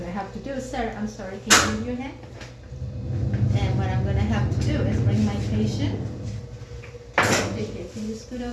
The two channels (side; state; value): both; identical; correlation 1.00